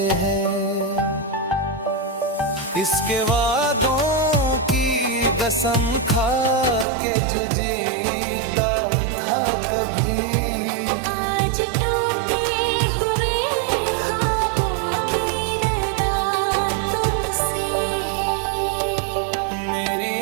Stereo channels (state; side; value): drops out; left; at 6.9 s